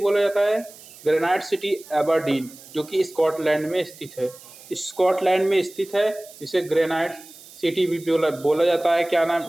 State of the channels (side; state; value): right; noise; hiss, 20 dB below the sound